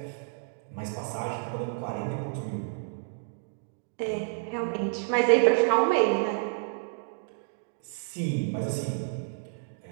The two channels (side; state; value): left; silent; digital silence